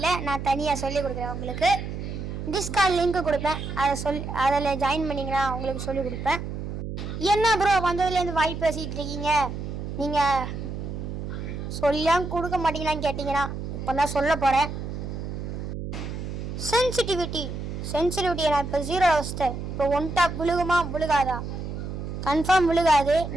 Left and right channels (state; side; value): noise; right; hum, 6 dB below the sound